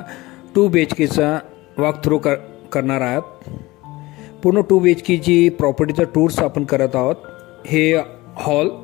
2 BHKचा वॉक थ्रू करणार आहोत. पूर्ण 2 BHKची प्रॉपर्टीचा टूर्स आपण करत आहोत. हे हॉल,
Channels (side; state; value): right; quieter; 20.3 dB